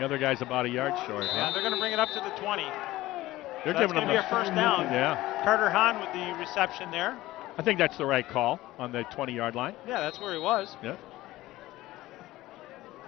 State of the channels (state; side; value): quieter; right; 17.1 dB